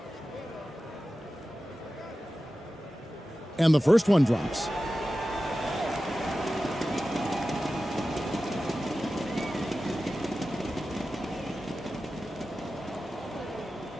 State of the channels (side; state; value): both; normal; correlation 0.94